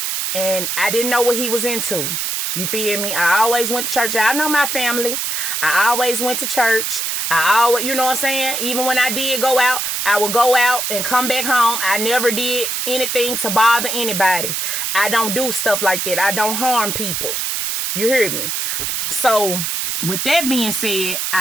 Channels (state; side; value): noise; right; hiss, 1 dB below the sound